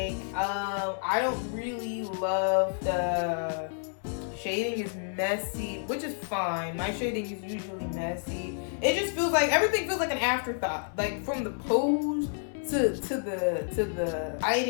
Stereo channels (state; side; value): silent; right; 58 dB below the other